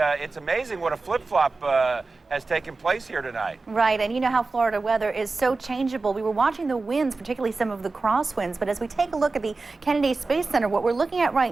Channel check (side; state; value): left; quieter; 3.8 dB